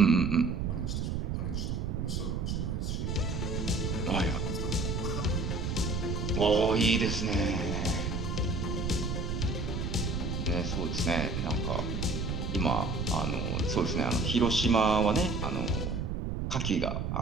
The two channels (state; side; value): noise; right; rumble, 2 dB below the sound